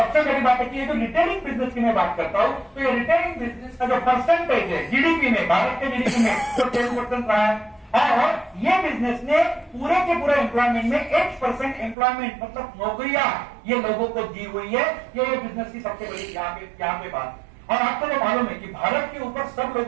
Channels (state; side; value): drops out; left; at 12.0 s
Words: बड़ी बात है कि ये जो रिटेलिंग बिजनेस की मैं बात करता हूँ, तो ये रिटेलिंग बिजनेस का जो परसेंटेज है जीडीपी में, भारत के जीडीपी में तो 10% रहा है। और ये बिजनेस ने पूरे के पूरे एम्प्लॉयमेंट में 8% एम्प्लॉयमेंट मतलब नौकरियां ये लोगों को दी हुई है। ये बिजनेस की सबसे बड़ी यहाँ पे बात। और आपको तो मालूम है कि भारत के ऊपर सब